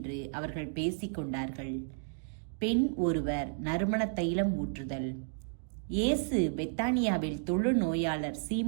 அவர்கள் பேசிக்கொண்டார்கள். பெண் ஒருவர் நறுமண தைலம் ஊற்றுதல். இயேசு பெத்தானியாவில் தொழுநோயாளர்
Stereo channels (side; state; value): left; silent; digital silence